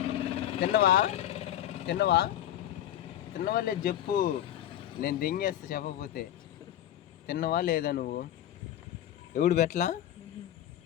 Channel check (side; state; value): right; quieter; 11.9 dB